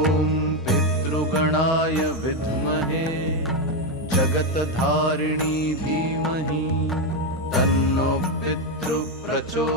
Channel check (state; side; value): normal; both; correlation 0.07